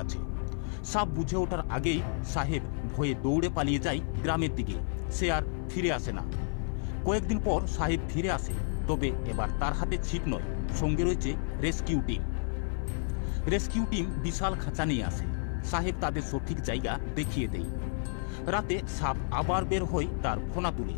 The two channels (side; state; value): right; silent; 57 dB below the other